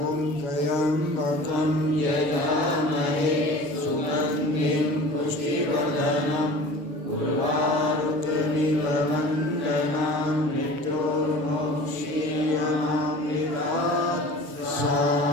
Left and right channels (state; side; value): late; left; 6.5 ms